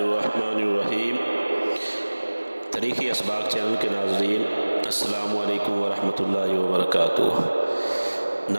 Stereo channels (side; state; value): both; inverted; correlation -1.00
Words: الرحیم۔ تاریخی اسباق چینل کے ناظرین، السلام علیکم ورحمۃ اللہ وبرکاتہ۔